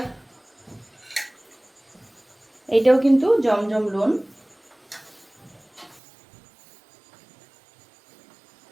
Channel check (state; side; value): drops out; left; at 6.0 s